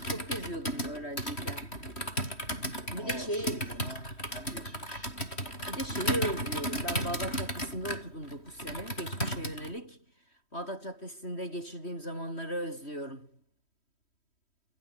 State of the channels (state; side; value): late; right; 3.1 ms